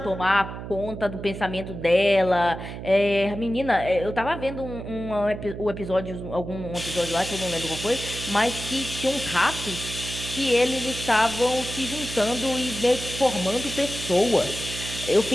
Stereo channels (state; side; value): noise; right; hum, 9 dB below the sound